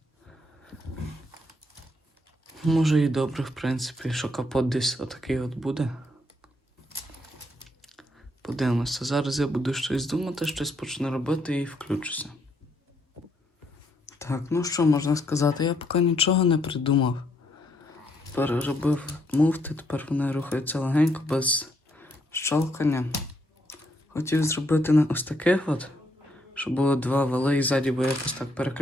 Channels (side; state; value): both; normal; correlation 0.73